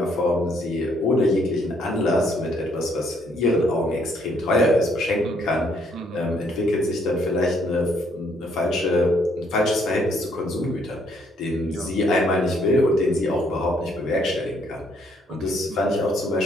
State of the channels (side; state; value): both; normal; correlation 0.69